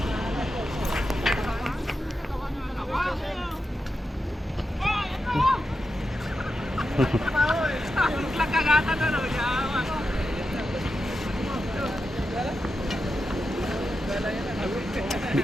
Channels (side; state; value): both; normal; correlation 0.89